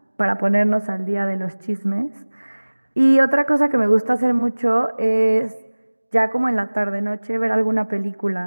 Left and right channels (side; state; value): both; inverted; correlation -1.00